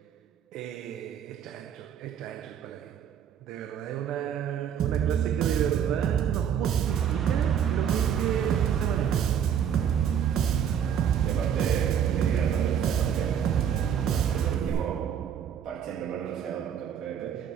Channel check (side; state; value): left; quieter; 8.7 dB